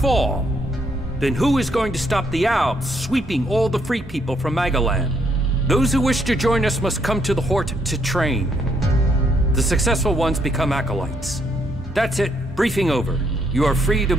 then who is going to stop the Alps sweeping all the free people from Magalan? Those who wish to join us must come to the Hort to train. The successful ones become acolytes. That's it. Briefing over. You are free to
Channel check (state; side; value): normal; both; correlation 0.72